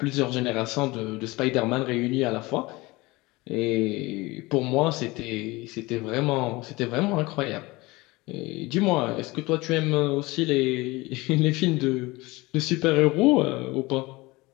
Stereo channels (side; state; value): right; quieter; 22.1 dB